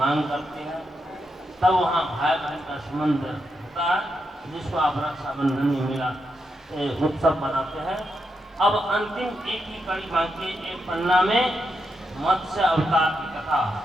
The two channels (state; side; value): normal; both; correlation 0.84